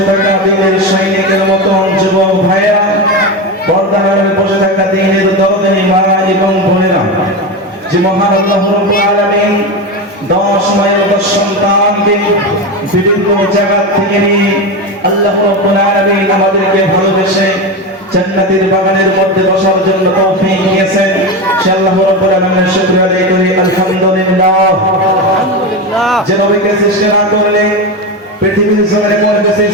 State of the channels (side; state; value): both; normal; correlation 0.18